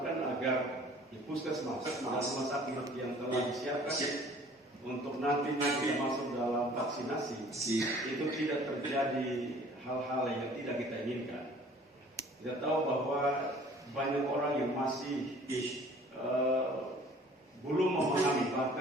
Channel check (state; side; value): normal; both; correlation 0.51